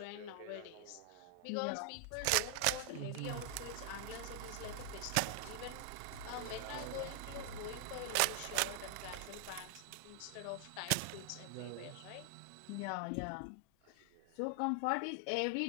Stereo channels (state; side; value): different; both; correlation 0.00